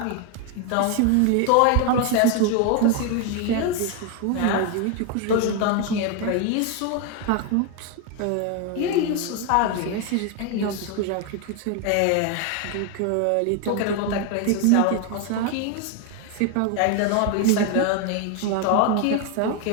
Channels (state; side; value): different; both; correlation 0.01